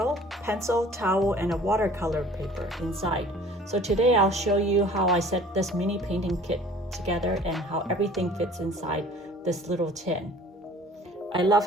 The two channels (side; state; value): both; normal; correlation 0.49